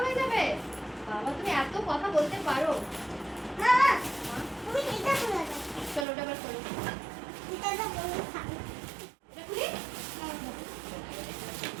হয়ে যাবে। বাবা, তুমি এত কথা বলতে পারো। চলো ওটা এবার করো। এটা খুলি।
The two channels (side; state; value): left; drops out; at 6.1 s